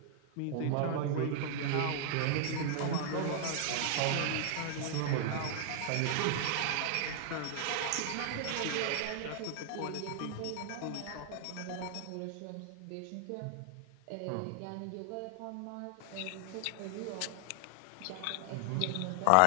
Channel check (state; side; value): different; both; correlation 0.00